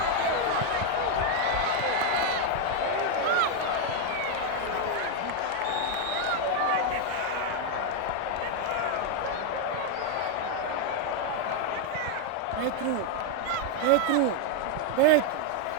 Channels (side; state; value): both; different; correlation 0.01